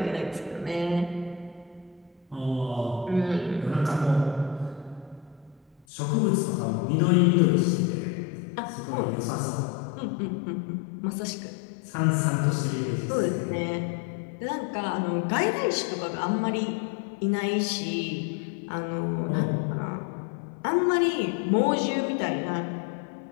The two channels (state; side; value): drops out; right; at 5.9 s